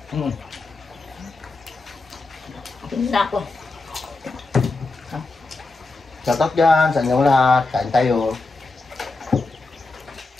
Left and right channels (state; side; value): quieter; right; 3.5 dB